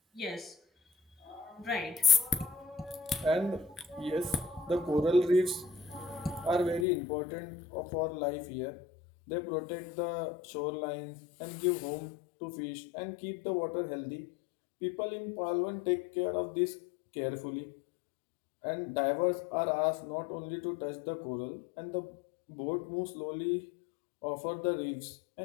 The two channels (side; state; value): right; drops out; at 6.9 s